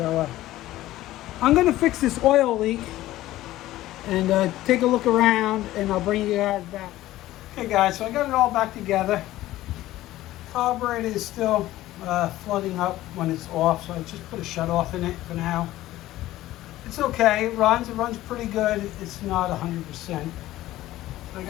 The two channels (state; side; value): quieter; right; 15.5 dB